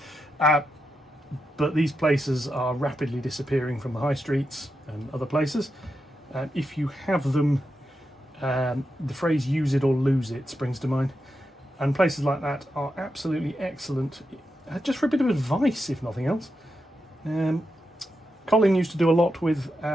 But these places are rapidly disappearing from the high streets and other places. If you have them, the phrase "use it or lose it" springs to mind. And places like that are absolutely excellent, just for a bit of advice, if nothing else. Colin used to do a lot with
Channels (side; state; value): both; normal; correlation 0.87